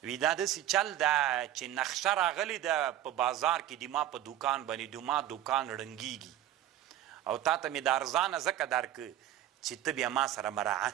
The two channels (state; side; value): quieter; left; 12.4 dB